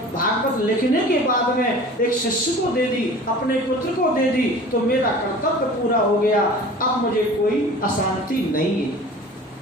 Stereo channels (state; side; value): normal; both; correlation 0.41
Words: भागवत लिखने के बाद में एक शिष्य को दे दी, अपने पुत्र को दे दी, तो मेरा कर्तव्य पूरा हो गया। अब मुझे कोई अशांति नहीं है।